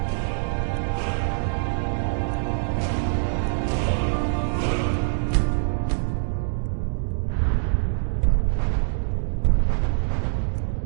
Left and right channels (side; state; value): left; silent; digital silence